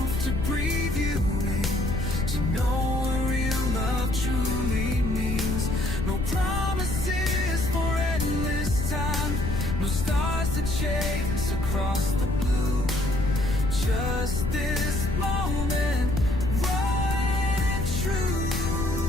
to breathe you in, to know what real love truly means. No promises for endless time, no stars to chase across the blue, just this moment, right and true.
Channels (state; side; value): noise; left; rumble, 2 dB below the sound